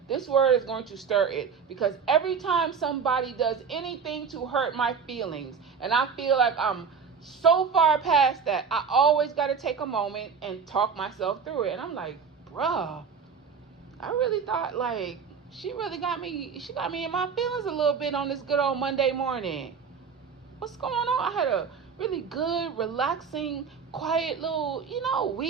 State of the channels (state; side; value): quieter; left; 6.1 dB